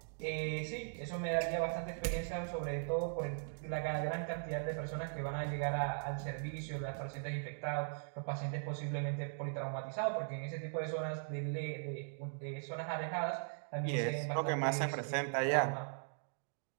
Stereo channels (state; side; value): silent; left; digital silence